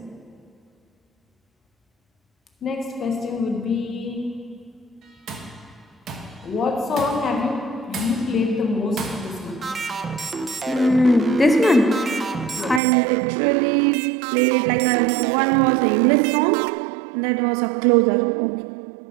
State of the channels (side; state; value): left; drops out; at 12.8 s